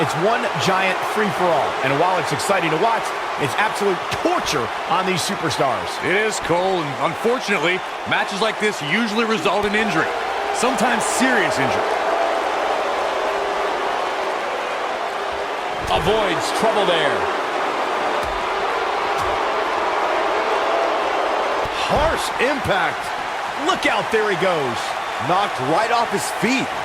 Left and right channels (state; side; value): identical; both; correlation 1.00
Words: one giant free-for-all. And while it's exciting to watch, it's absolute torture on these superstars. It is, Cole, and unfortunately, matches like this usually result in injury. Sometimes serious injury. Avoids trouble there. Harsh impact. Look out, there he goes. Knocked right off his feet.